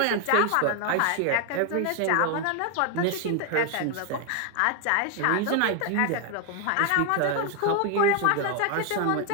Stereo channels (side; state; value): both; different; correlation 0.00